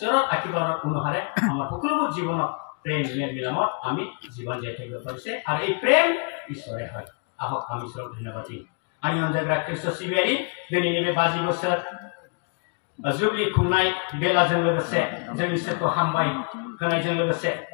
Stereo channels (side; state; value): right; quieter; 37.6 dB